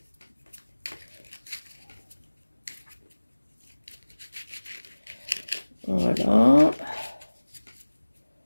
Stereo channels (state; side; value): inverted; both; correlation -1.00